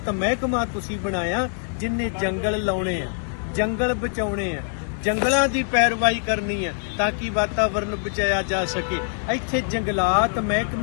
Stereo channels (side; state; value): right; silent; 58 dB below the other